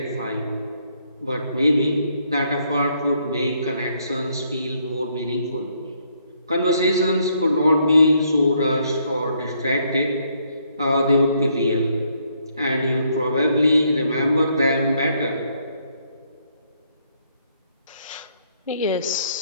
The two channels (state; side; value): inverted; both; correlation -0.71